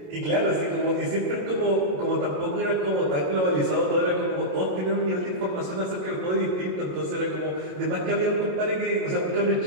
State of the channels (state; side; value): late; left; 27 ms